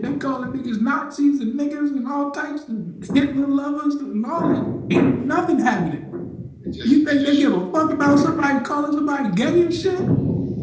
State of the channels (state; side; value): identical; both; correlation 1.00